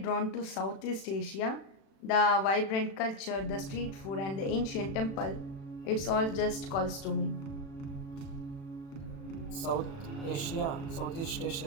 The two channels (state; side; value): late; right; 36 ms